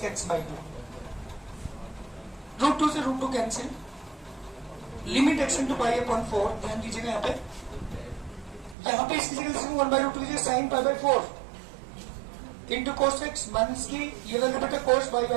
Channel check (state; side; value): drops out; left; at 8.8 s